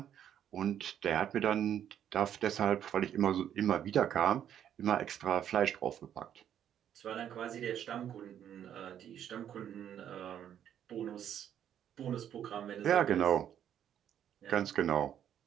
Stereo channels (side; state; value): left; quieter; 9.9 dB